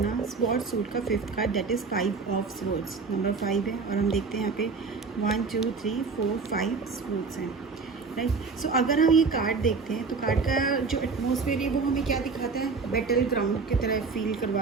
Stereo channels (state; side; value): quieter; left; 4.6 dB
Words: sword suit का 5th card that is 5 of swords, number 5 है। और हम देखते हैं यहाँ पे 1 2 3 4 5 स्वॉर्ड्स हैं, राइट। सो अगर हम ये कार्ड देखते हैं तो कार्ड का जो एटमॉस्फेयर है वो हमें क्या दिखाता है, बैटल ग्राउंड की तरह फील